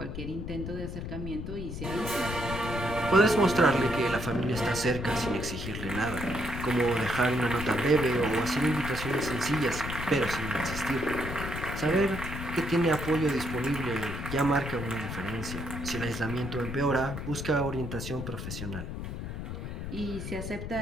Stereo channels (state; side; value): noise; left; rumble, 6 dB below the sound